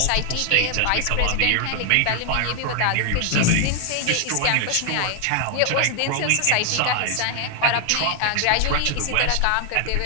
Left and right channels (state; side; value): different; both; correlation 0.00